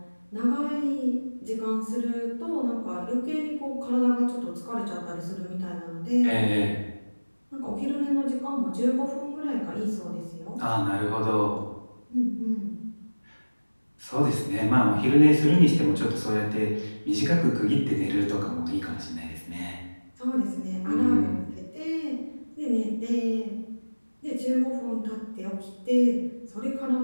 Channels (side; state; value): both; inverted; correlation -1.00